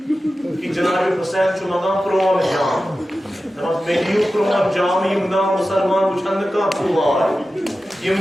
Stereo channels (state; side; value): normal; both; correlation 0.94